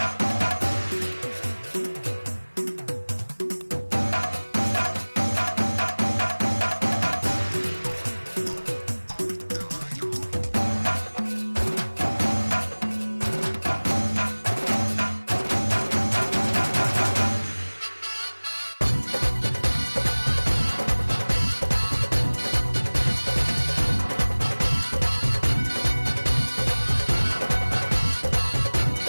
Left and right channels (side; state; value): both; inverted; correlation -1.00